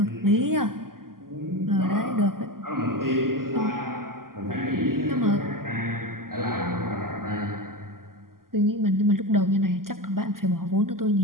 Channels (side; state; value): left; late; 0.92 ms